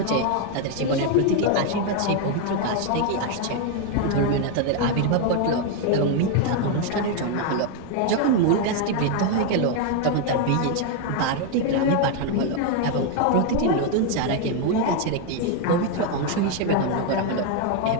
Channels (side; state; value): both; different; correlation 0.01